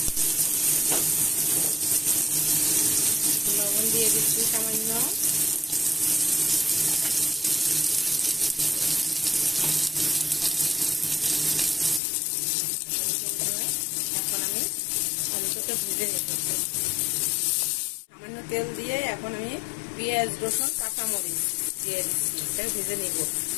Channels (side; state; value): right; drops out; at 12.0 s